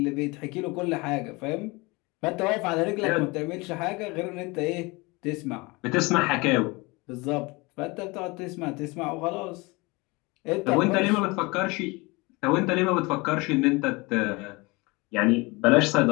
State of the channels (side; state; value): right; quieter; 25.0 dB